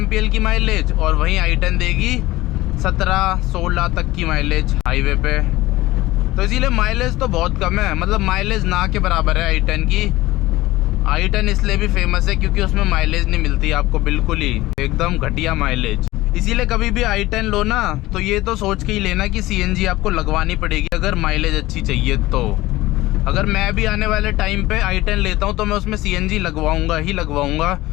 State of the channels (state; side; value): quieter; right; 18.0 dB